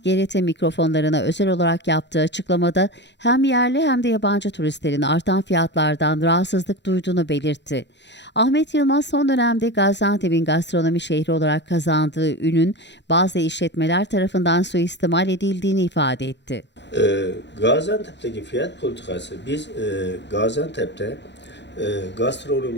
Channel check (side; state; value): right; late; 0.51 ms